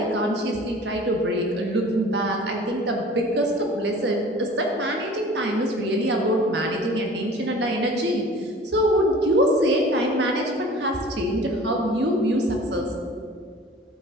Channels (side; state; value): both; normal; correlation 0.45